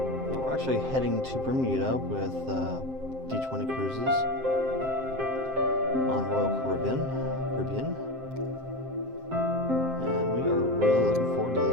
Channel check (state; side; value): late; left; 7.6 ms